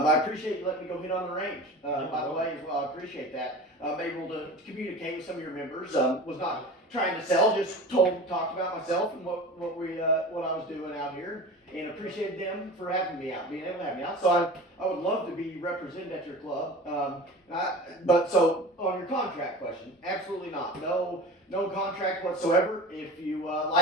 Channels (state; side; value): normal; both; correlation 0.35